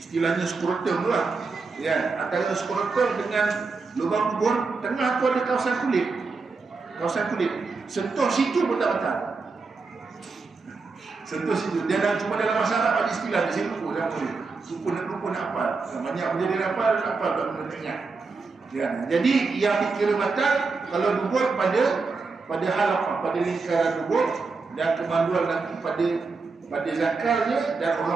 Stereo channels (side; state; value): left; quieter; 4.3 dB